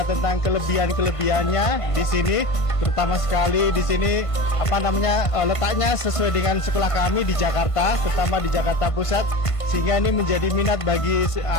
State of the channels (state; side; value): late; right; 1.5 ms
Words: tentang kelebihan-kelebihannya di sini, terutama sekali di sini letaknya sesuai dengan sekolah kami di Jakarta, terutama di Jakarta Pusat, sehingga ini menjadi minat bagi